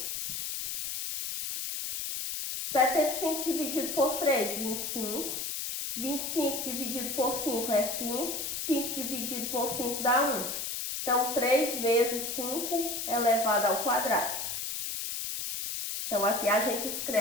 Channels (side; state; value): left; noise; hiss, 4 dB below the sound